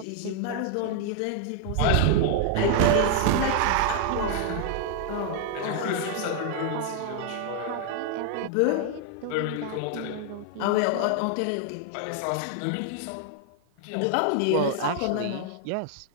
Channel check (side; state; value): both; different; correlation 0.00